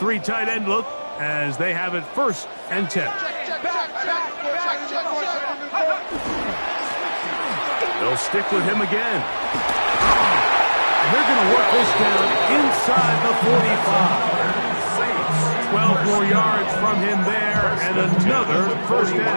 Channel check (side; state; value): both; inverted; correlation -1.00